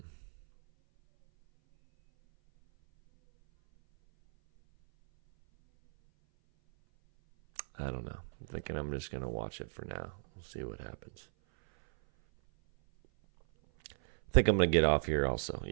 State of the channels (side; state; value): left; silent; 55 dB below the other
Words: I don't know. I'm thinking I'm just going to watch it for now. We'll see what happens. I think I'm going to get off here also.